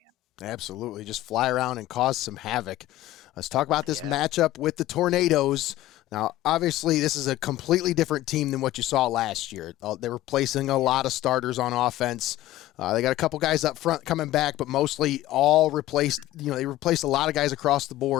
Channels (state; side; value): quieter; right; 15.3 dB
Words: Absolutely. Just fly around and cause some havoc. Let's talk about this matchup with the Tornadoes. Now, obviously, this is a completely different team than what you saw last year. They were placing a lot of starters on offense. They got a couple guys up front coming back, but mostly all replaced. They replaced a lot of guys across the